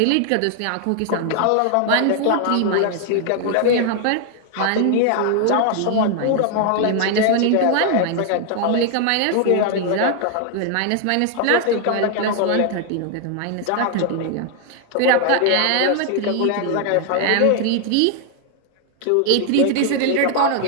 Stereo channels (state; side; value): different; both; correlation 0.00